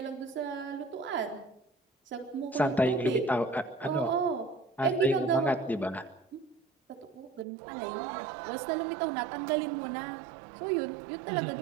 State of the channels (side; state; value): left; drops out; at 7.5 s